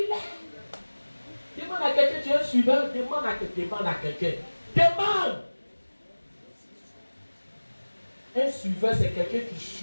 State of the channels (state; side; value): inverted; both; correlation -1.00